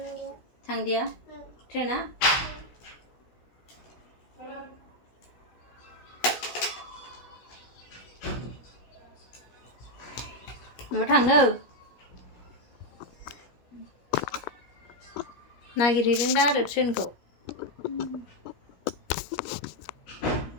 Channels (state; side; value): late; right; 16 ms